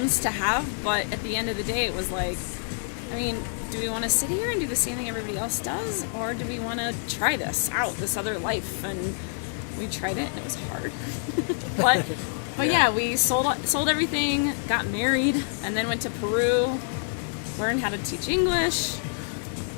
to have, but at the end of the day, it was like, I mean, do we want to sit here and do the same thing everybody else does, or do we want to try this out, this other life? And we tried it, and it was hard. but yeah, we sold everything, got married, and then went to Peru, learned how to teach English,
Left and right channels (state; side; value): silent; right; digital silence